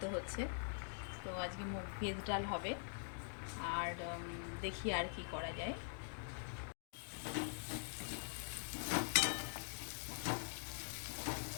হচ্ছে। তো আজকে ভেজ ডাল হবে আর দেখি আর কি করা যায়।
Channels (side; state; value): right; silent; digital silence